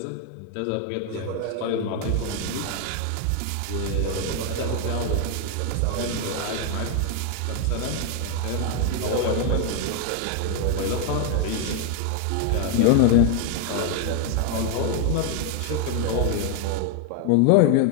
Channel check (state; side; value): different; both; correlation 0.00